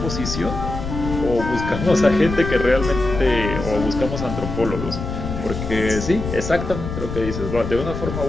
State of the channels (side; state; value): left; noise; rumble, 6 dB below the sound